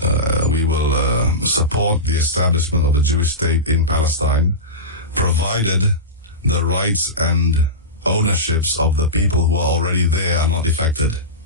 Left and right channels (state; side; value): normal; both; correlation -0.18